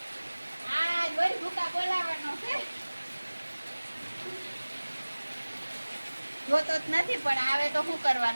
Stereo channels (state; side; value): inverted; both; correlation -1.00